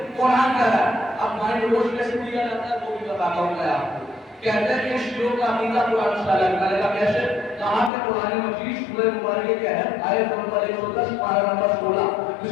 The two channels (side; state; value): right; drops out; at 7.9 s